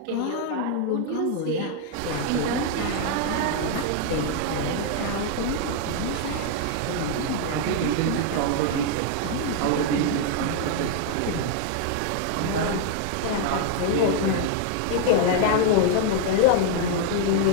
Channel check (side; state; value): both; different; correlation 0.00